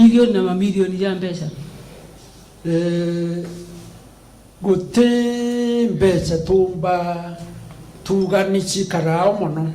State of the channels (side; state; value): both; identical; correlation 1.00